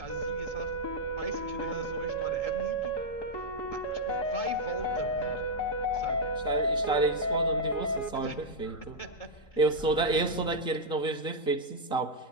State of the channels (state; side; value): late; right; 3.8 ms